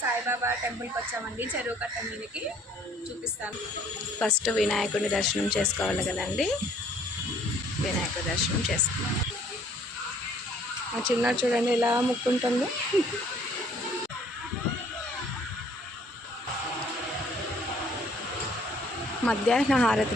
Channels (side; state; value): both; normal; correlation 0.60